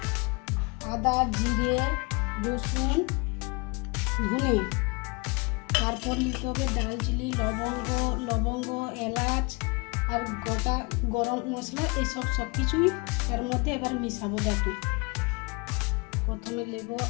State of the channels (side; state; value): right; quieter; 29.0 dB